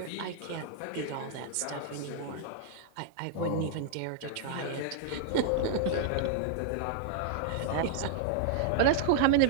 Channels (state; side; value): different; both; correlation -0.01